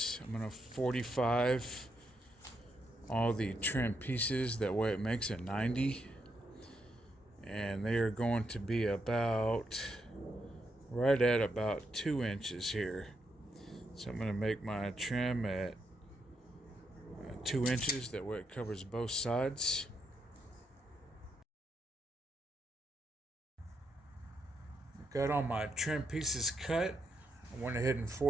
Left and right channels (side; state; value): both; normal; correlation 0.80